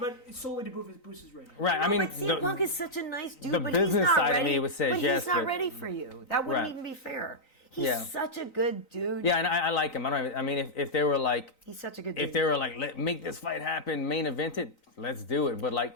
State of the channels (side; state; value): right; late; 3.9 ms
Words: But solely to boost his ratings. Right. I mean, but CM Punk is such a nice dude. the but business he's not side of ready, me would say but yes, he's not but- ready for you. That wouldn't Right. even be fair. He's Yeah. such a good dude. yeah, and I like him. I mean, if they were like, He's such a good dude. if they were like, make this fight happen, main event it, let's do it. But